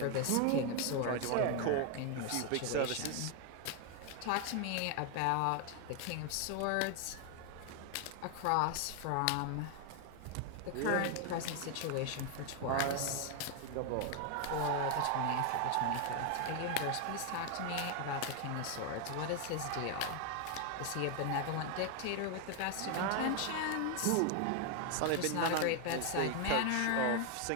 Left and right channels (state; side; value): different; both; correlation 0.00